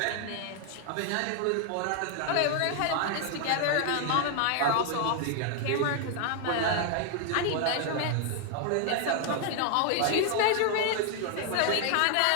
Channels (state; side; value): different; both; correlation 0.00